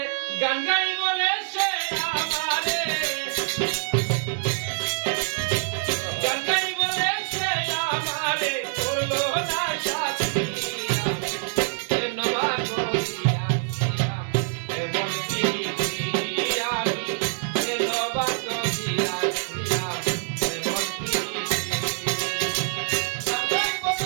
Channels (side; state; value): left; silent; 61 dB below the other